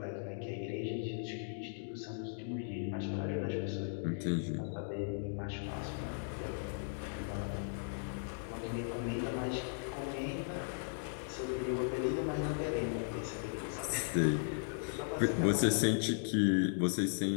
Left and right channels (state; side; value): silent; right; digital silence